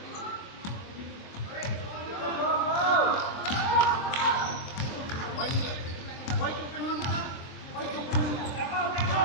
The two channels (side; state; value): right; late; 23 ms